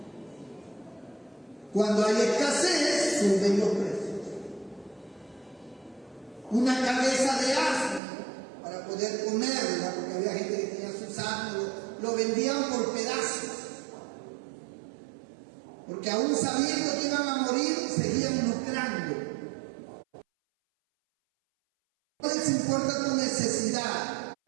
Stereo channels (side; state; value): left; drops out; at 8.0 s